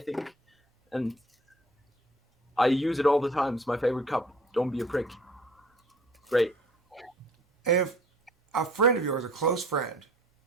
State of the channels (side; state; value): both; normal; correlation 0.51